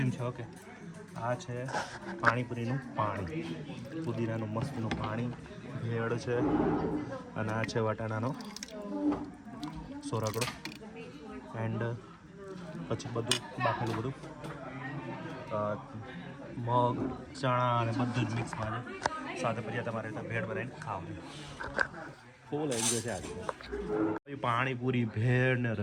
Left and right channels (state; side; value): identical; both; correlation 1.00